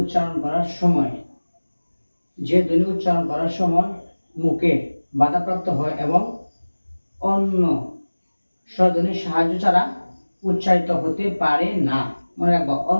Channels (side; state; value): both; inverted; correlation -1.00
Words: করার সময়, যে ধ্বনি উচ্চারণ করার সময় মুখে বাধাপ্রাপ্ত হয় এবং অন্য স্বরধ্বনির সাহায্য ছাড়া উচ্চারিত হতে পারে না। মনে রাখবো,